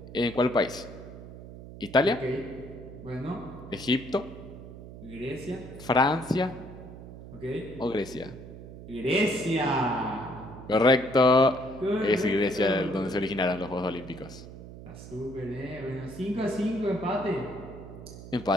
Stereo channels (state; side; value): noise; right; hum, 14 dB below the sound